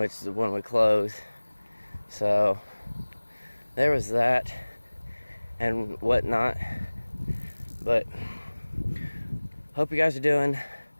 is when we closed. So there was that and whatnot. But hope you guys are doing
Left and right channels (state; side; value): inverted; both; correlation -1.00